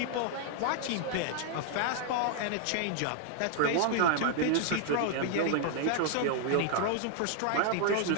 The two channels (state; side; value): different; both; correlation 0.00